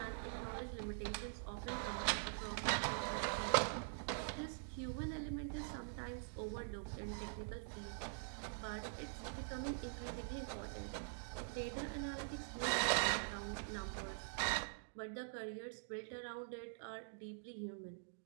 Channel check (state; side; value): silent; left; digital silence